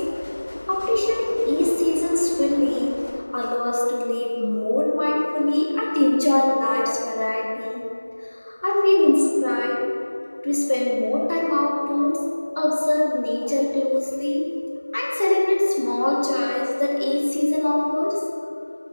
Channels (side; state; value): both; inverted; correlation -1.00